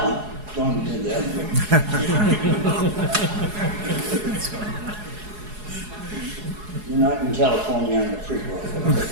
one. Don't do that one. You're not in California on the freeway.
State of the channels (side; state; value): left; late; 4.8 ms